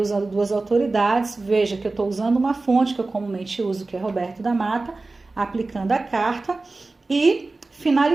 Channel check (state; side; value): quieter; left; 3.4 dB